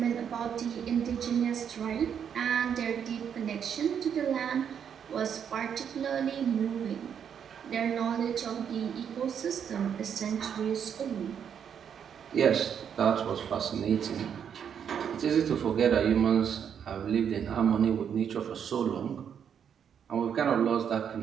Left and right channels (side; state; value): left; quieter; 8.0 dB